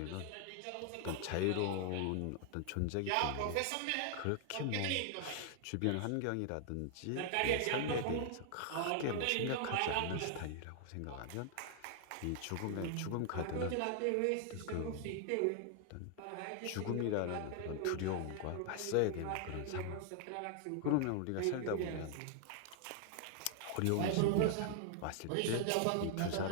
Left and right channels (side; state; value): both; different; correlation 0.00